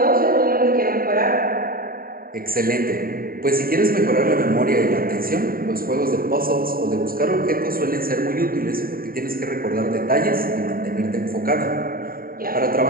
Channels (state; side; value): late; left; 0.42 ms